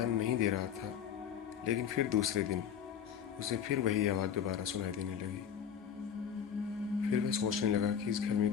नहीं दे रहा था, लेकिन फिर दूसरे दिन उसे फिर वही आवाज़ दोबारा सुनाई देने लगी। फिर वह सोचने लगा कि इस घर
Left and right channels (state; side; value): quieter; right; 8.3 dB